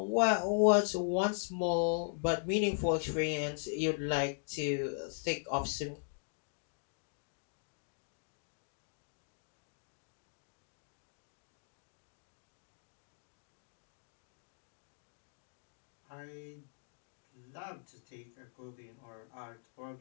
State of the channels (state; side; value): silent; right; digital silence